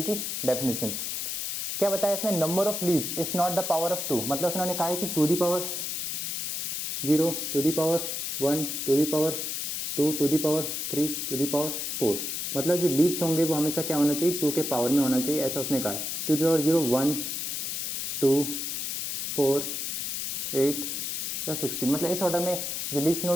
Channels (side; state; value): left; noise; hiss, 3 dB below the sound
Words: की डेफिनेशन। क्या बताया इसमें, number of leaves is not the power of 2, मतलब उन्होंने कहा है कि 2 दी power 0 2 the power 1 2 the power 2 2 the power 3 2 the power 4। मतलब जो लीव्स होंगे वो हमेशा क्या होना चाहिए, 2 के पावर में होना चाहिए, ऐसा उसने कहा है। 2 दी पावर 0 1 2 4 8 या 16, मतलब इस ऑर्डर में जो लीफ